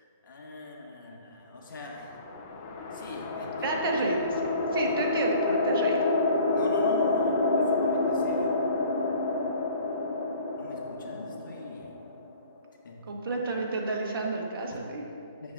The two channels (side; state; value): both; inverted; correlation -0.49